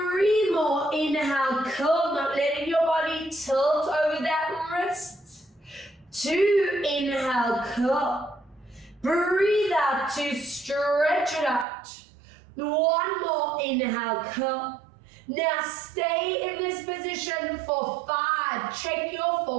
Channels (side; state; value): left; drops out; at 11.7 s